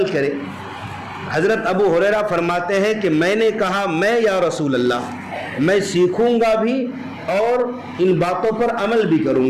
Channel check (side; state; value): both; identical; correlation 1.00